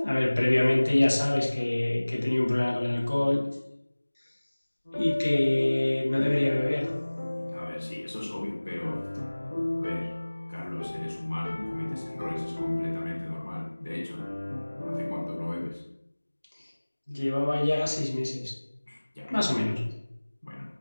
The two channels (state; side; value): inverted; both; correlation -1.00